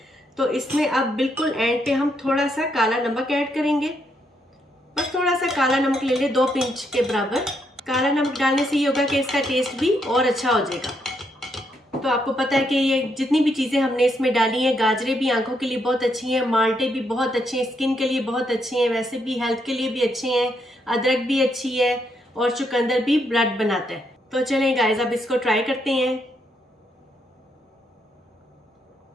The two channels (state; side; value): normal; both; correlation 0.77